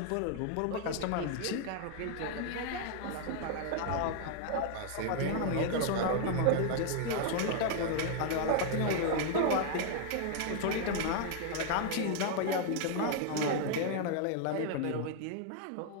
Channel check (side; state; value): both; different; correlation 0.00